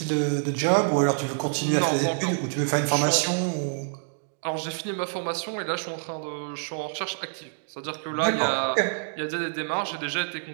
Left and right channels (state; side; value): silent; left; digital silence